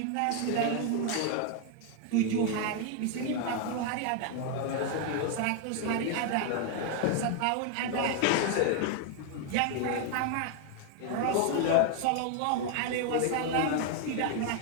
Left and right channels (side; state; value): both; different; correlation 0.00